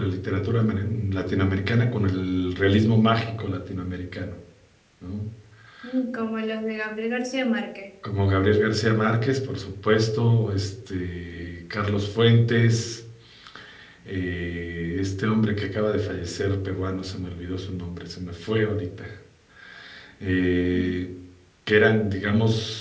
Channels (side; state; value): both; identical; correlation 1.00